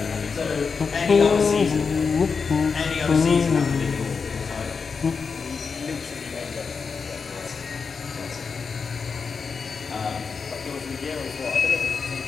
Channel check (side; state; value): right; quieter; 5.4 dB